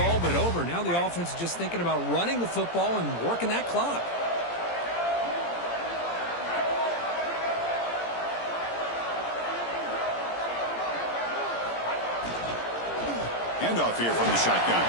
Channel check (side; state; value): right; late; 17 ms